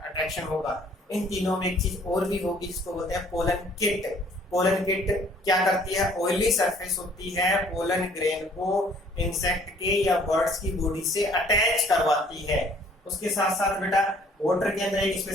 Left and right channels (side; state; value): both; normal; correlation 0.57